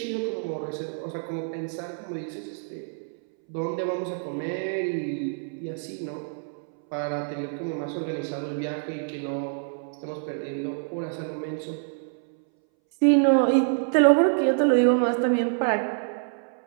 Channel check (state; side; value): silent; left; 60 dB below the other